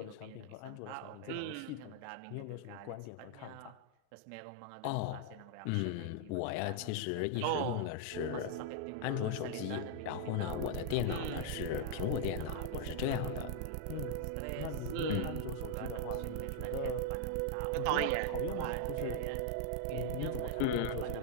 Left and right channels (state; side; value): different; both; correlation 0.00